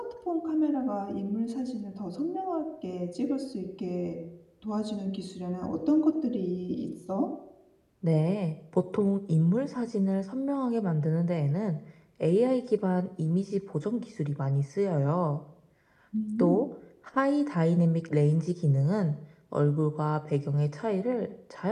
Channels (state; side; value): identical; both; correlation 1.00